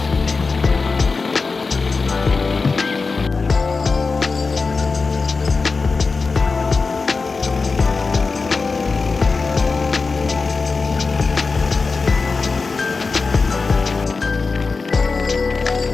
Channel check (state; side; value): quieter; right; 4.3 dB